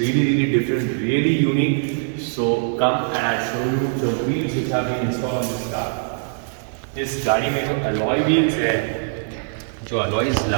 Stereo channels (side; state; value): left; silent; digital silence